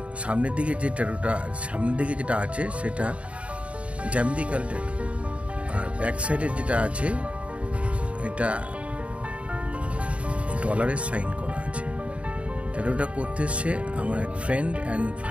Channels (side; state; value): left; late; 0.063 ms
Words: সামনের দিকে যেটা আছে সেটা জ্যামিতিক্যাল ট্যাটু, আর ব্যাক সাইডে যেটা আছে এটা ডলারের সাইন করা আছে। ট্যাটুটা করতে এসছে আমার এক ফ্রেন্ড অ্যান্ড